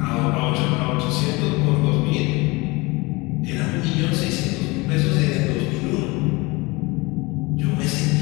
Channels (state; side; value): quieter; right; 24.5 dB